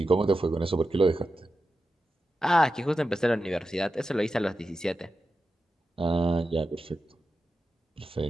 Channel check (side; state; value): both; normal; correlation 0.91